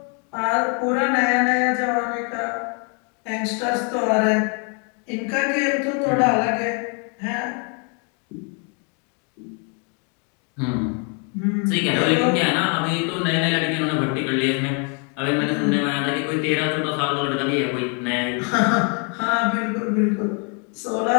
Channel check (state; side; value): quieter; right; 37.3 dB